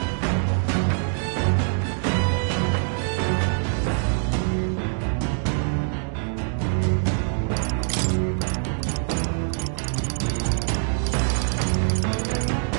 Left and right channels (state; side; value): silent; left; digital silence